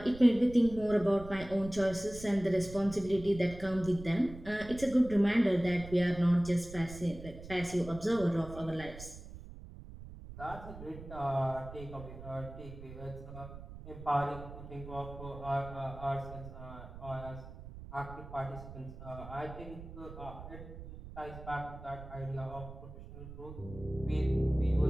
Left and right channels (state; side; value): noise; right; rumble, 13 dB below the sound